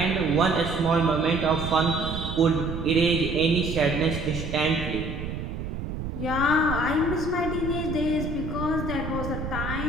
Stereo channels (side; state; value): right; noise; rumble, 6 dB below the sound